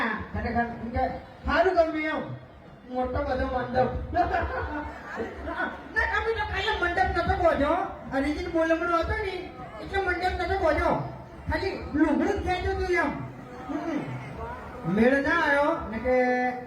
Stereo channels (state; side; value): identical; both; correlation 1.00